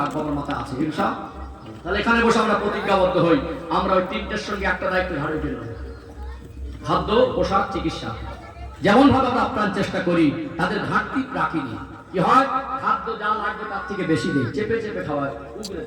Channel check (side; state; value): both; identical; correlation 1.00